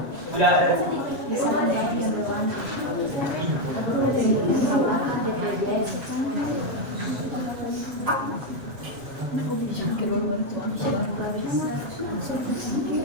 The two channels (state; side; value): late; left; 7.7 ms